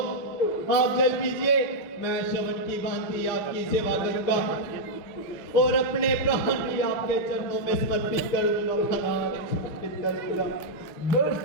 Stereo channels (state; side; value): late; right; 6.5 ms